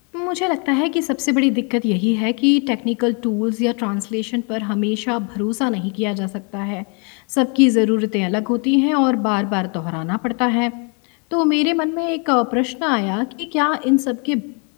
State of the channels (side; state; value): right; quieter; 36.2 dB